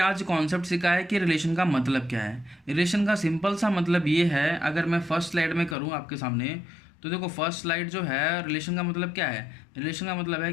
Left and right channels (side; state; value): right; drops out; at 5.8 s